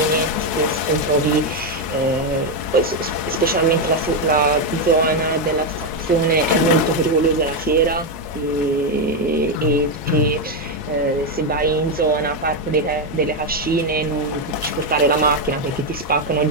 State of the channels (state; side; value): normal; both; correlation 0.05